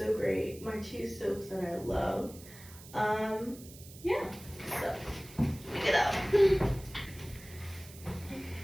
great. My 2 soaps that I love. Yeah. So pick it up.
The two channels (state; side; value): noise; right; hiss, 18 dB below the sound